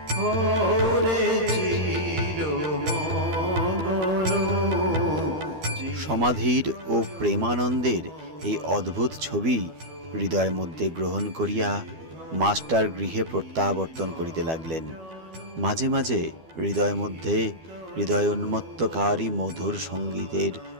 হরে চিরমগন। সমাধির ও প্রেমানন্দের এই অদ্ভুত ছবি হৃদয়ের মধ্যে গ্রহণ করিয়া মাস্টার গৃহে প্রত্যাবর্তন করিতে লাগলেন। মাঝে মাঝে হৃদয়ের মধ্যে হৃদয় উন্মত্তকারী মধুর সঙ্গীতের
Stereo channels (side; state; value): left; late; 12 ms